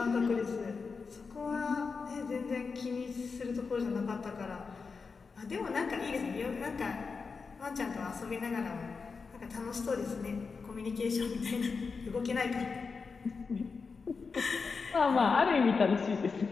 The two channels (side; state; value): right; quieter; 4.9 dB